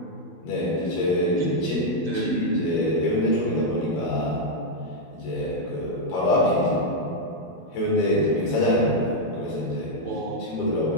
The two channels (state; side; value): late; right; 12 ms